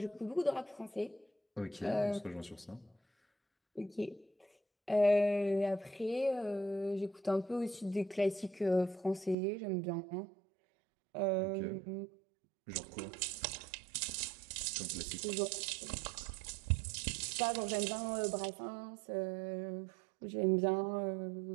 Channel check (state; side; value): drops out; left; at 9.3 s